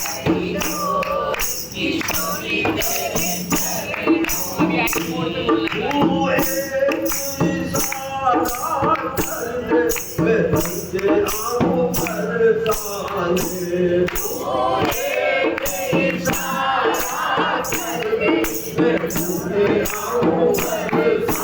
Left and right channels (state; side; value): identical; both; correlation 1.00